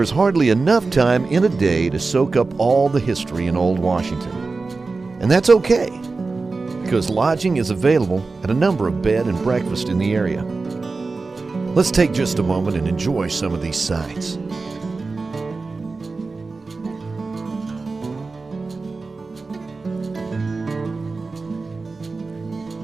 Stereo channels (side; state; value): left; quieter; 3.9 dB